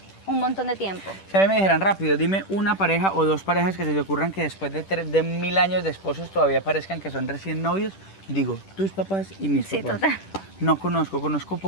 un montón de tiempo. Si a mí me dijeran rápido, dime una pareja o dos parejas que se te ocurran que después de 1000 años de esposos todavía parezcan que son recién novios, digo, tus papás y mis Sí, papás. total. No conozco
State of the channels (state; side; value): late; right; 10 ms